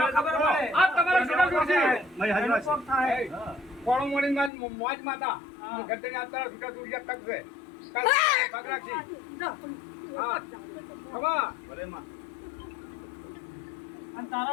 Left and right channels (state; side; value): drops out; right; at 4.5 s